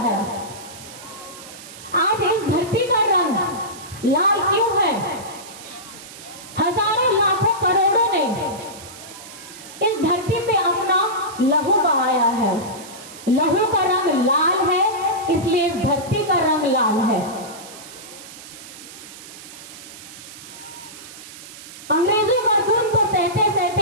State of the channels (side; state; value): right; noise; hiss, 16 dB below the sound